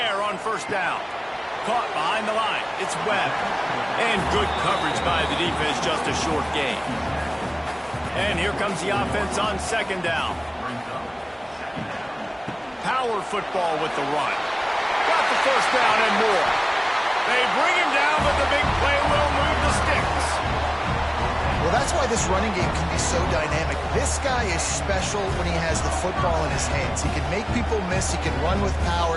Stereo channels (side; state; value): both; identical; correlation 1.00